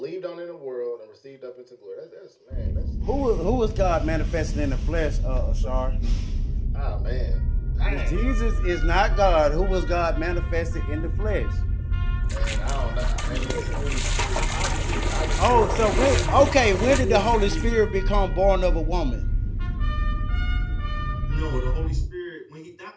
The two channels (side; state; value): both; identical; correlation 1.00